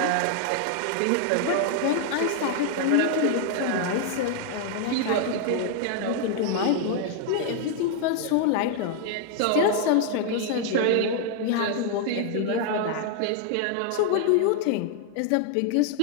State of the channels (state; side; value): different; both; correlation 0.00